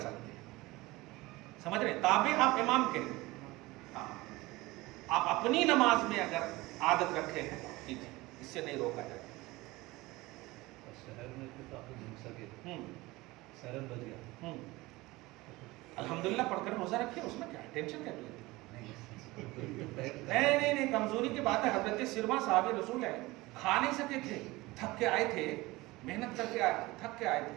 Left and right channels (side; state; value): left; quieter; 20.7 dB